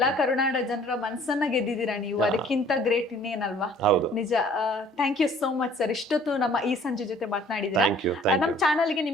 ಕರುನಾಡ ಜನರ ಮನಸ್ಸನ್ನ ಗೆದ್ದಿದ್ದೀರಾ ನೀವು. ಅದಕ್ಕಿಂತ ಗ್ರೇಟ್ ಇನ್ನೇನಲ್ವಾ? ನಿಜ. Thank you so much sir, ಇಷ್ಟೊತ್ತು ನಮ್ಮ ಈ ಸಂಜೆ ಜೊತೆ ಮಾತನಾಡಿದ್ರೆ. ನಮ್ಮ ಚಾನಲ್ಗೆ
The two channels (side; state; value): both; normal; correlation 0.54